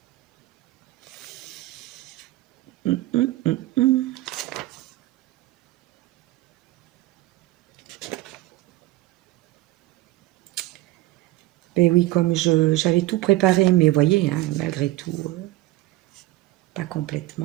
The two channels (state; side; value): quieter; left; 17.1 dB